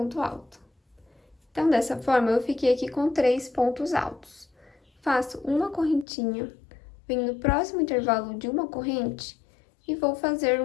alto. Então, dessa forma, eu fiquei aqui com 3 pontos altos. Faço uma correntinha, venho no próximo intervalo de uma corrente e vou fazer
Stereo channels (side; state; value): right; drops out; at 6.1 s